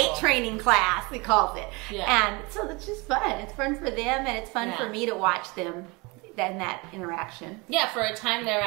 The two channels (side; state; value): left; quieter; 26.8 dB